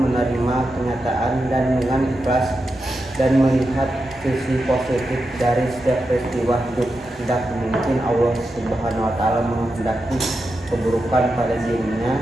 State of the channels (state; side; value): normal; both; correlation 0.88